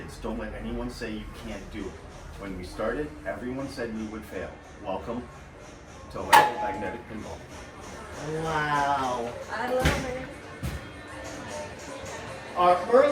Don't let anyone say you can't do it. When we started, everyone said we would fail. Welcome to Electromagnetic Pinball. Wow. I love it. Our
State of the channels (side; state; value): both; identical; correlation 1.00